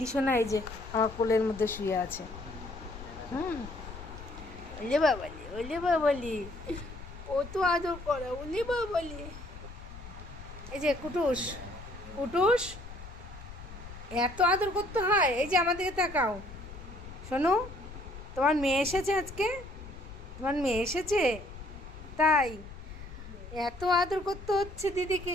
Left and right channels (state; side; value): noise; left; rumble, 14 dB below the sound